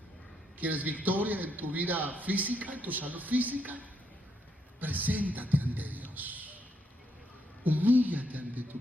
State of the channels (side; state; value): both; normal; correlation 0.76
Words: ¿Quieres victoria en tu vida física, en tu salud física? Preséntate ante Dios. Humíllate